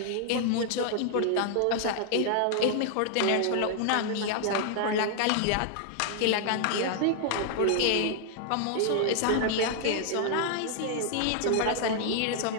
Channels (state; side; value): different; both; correlation 0.00